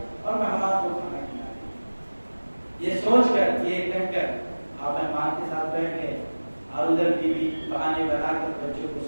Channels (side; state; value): both; inverted; correlation -1.00